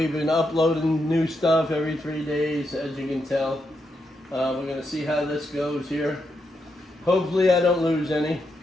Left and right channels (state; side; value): normal; both; correlation 0.83